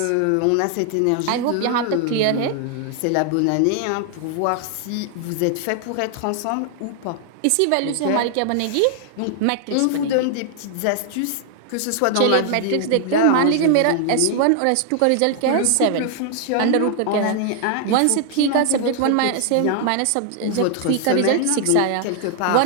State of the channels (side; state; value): both; different; correlation 0.00